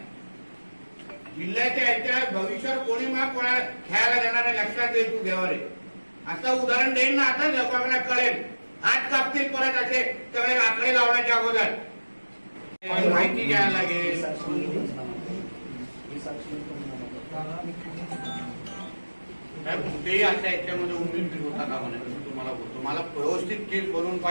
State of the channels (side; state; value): both; inverted; correlation -1.00